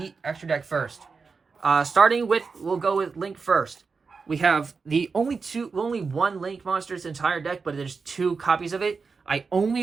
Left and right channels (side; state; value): left; quieter; 4.9 dB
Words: extra deck first. Starting with, we'll go with Link first. We have only 1 Link monster in this entire deck, but there's 2 copies of it. I